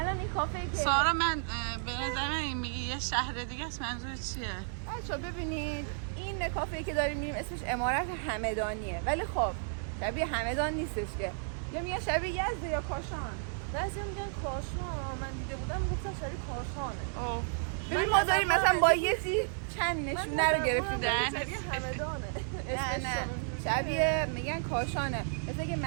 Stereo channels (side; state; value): left; silent; digital silence